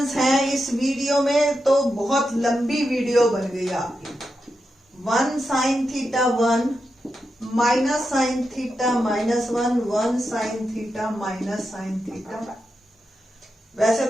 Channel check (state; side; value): normal; both; correlation 0.87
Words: हैं इस वीडियो में, तो बहुत लंबी वीडियो बन गई आपकी। 1 sine theta 1 minus sine theta -1 1 sine theta minus sine theta. वैसे